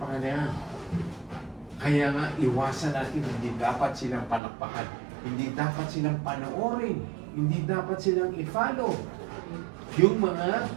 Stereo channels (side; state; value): left; drops out; at 4.4 s